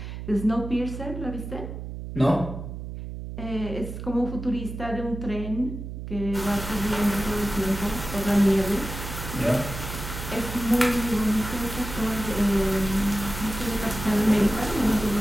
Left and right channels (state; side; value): noise; right; hum, 8 dB below the sound